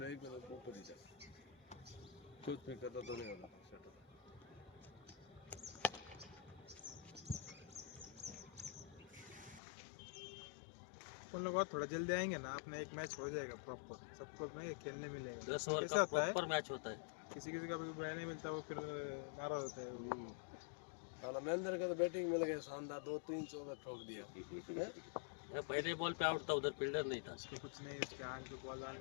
एक ऊपर ही था. कुछ नहीं करता तो नहीं होता. अपन लोग और थोड़ा जल्दी आएंगे ना, अपना एक मैच हो जाएगा प्रॉपर, सबको नहीं खेलने मिलेगा। 10 ओवर कैसा का होता है, प्रॉपर मैच होता है। किसी किसी का भी बैट नहीं मिलता, वो फिर नाराज होता है वो। महेंद्र का तो बैटिंग मिल गया शानदार, 2-3 चौका ठोक दिया। ये पहले बॉल पे आउट था, उधर फील्डर नहीं था। उसको कुछ नहीं, उसके आंख पे बॉल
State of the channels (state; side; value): drops out; right; at 9.6 s